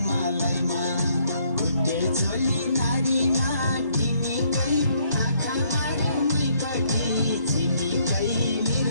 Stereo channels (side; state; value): both; inverted; correlation -0.68